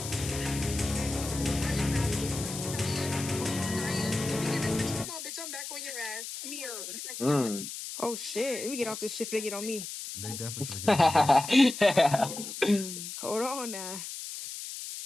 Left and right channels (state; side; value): noise; left; hiss, 8 dB below the sound